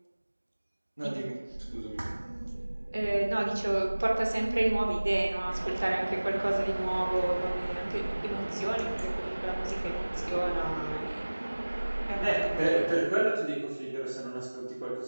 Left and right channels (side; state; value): both; inverted; correlation -1.00